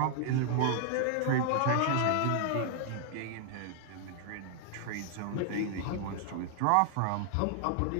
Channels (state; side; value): different; both; correlation 0.00